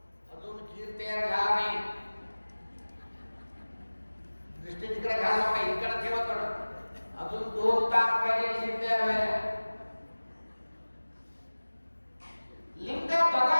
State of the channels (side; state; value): both; inverted; correlation -1.00